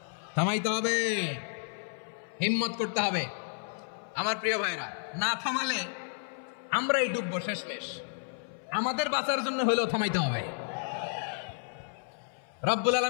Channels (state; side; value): silent; right; 57 dB below the other